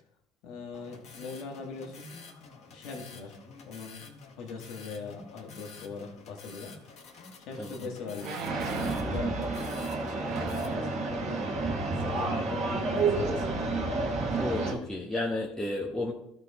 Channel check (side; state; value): both; normal; correlation 0.60